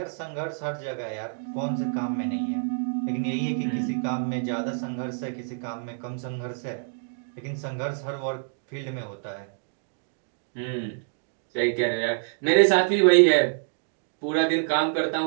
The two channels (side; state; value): left; silent; digital silence